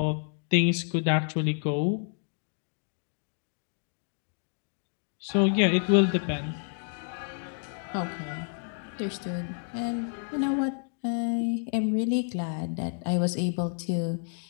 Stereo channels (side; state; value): right; silent; 58 dB below the other